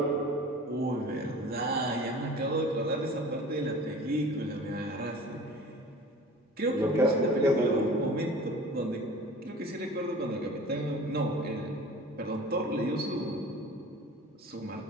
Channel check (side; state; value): both; normal; correlation 0.41